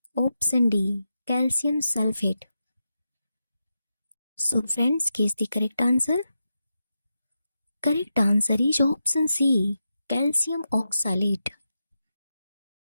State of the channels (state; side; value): inverted; both; correlation -0.88